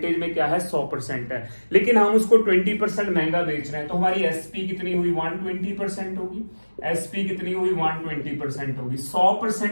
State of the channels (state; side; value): inverted; both; correlation -1.00